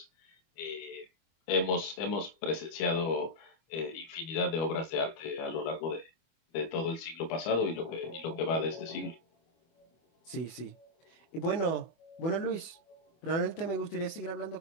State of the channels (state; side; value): late; right; 24 ms